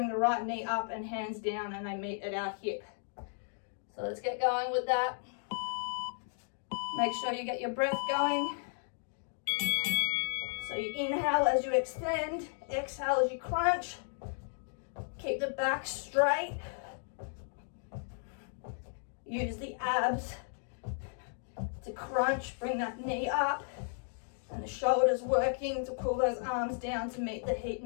the right knee up and hands down, and they meet at our hip. So let's get going with that. Make sure you get your breath going. So you inhale as you extend, exhale as you crunch. Keep the back straight. Use the abs to crunch, bring that knee up, and the shoulders working to pull those arms down to meet the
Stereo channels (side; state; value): right; silent; digital silence